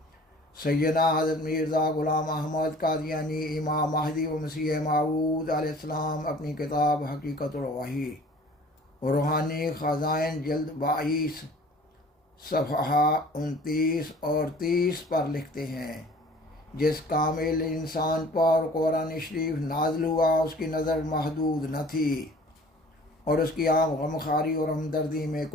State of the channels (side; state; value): both; normal; correlation 0.48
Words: سیدنا حضرت مرزا غلام احمد قادیانی امام مہدی و مسیح موعود علیہ السلام اپنی کتاب حقیقت الوحی روحانی خزائن جلد 22 صفحہ 29 اور 30 پر لکھتے ہیں، جس کامل انسان پر قرآن شریف نازل ہوا اس کی نظر محدود نہ تھی، اور اس کی عام غمخواری اور ہمدردی میں